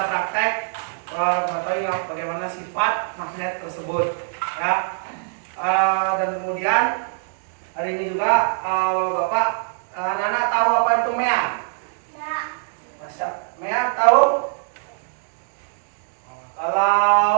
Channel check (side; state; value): left; silent; digital silence